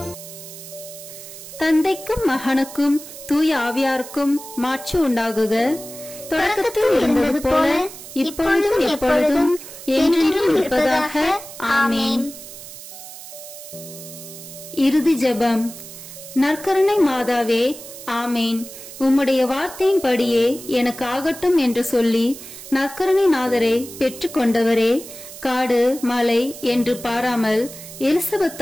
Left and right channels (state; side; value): noise; right; hiss, 14 dB below the sound